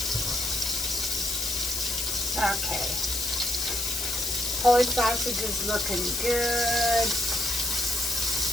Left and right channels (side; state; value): left; noise; hiss, 2 dB below the sound